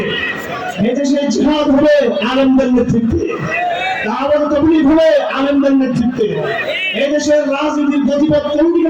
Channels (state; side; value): identical; both; correlation 1.00